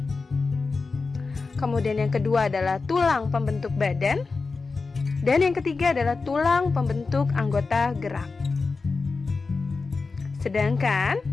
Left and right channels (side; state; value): right; quieter; 4.2 dB